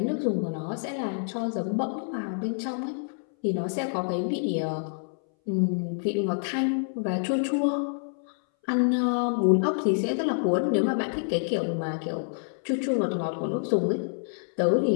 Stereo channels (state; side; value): silent; right; 60 dB below the other